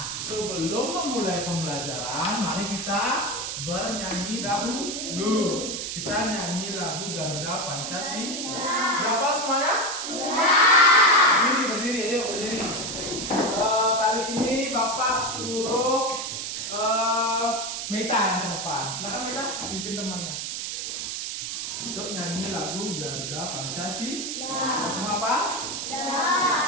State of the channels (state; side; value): noise; right; hiss, 4 dB below the sound